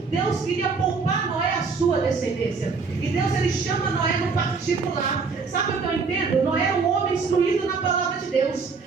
Deus queria poupar Noé a sua descendência. E Deus, ele chama Noé no particular. Sabe o que eu entendo? Noé era um homem instruído na palavra de Deus,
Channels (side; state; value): left; quieter; 4.8 dB